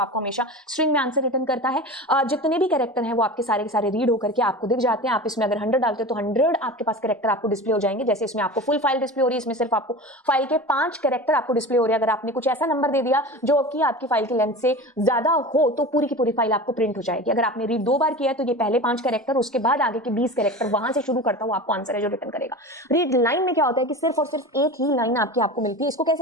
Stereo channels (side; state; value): both; normal; correlation 0.32